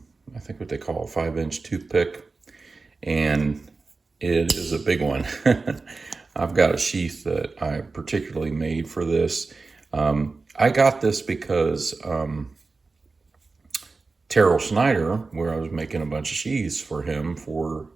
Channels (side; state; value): left; quieter; 3.9 dB